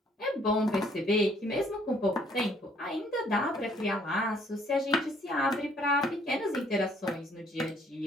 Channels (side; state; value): both; normal; correlation 0.63